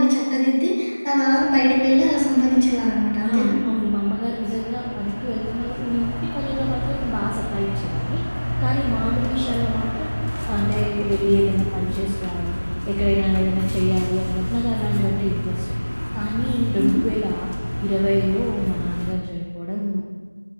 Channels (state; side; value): inverted; both; correlation -1.00